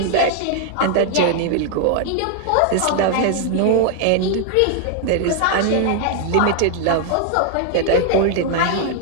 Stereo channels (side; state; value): both; different; correlation 0.00